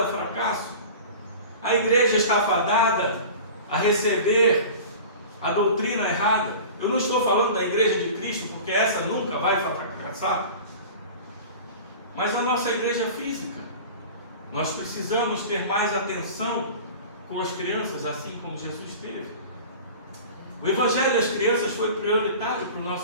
ao fracasso. A igreja está afadada a receber a doutrina errada. Eu não estou falando da igreja de Cristo, porque essa nunca vai fracassar, mas a nossa igreja física. Nós precisamos ter mais atenção com as crianças, assim como Jesus teve. O Evangelho das crianças foi prioritário para o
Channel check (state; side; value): inverted; both; correlation -0.37